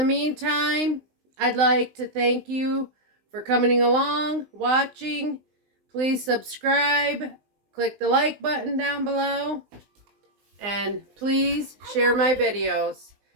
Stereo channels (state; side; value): late; left; 19 ms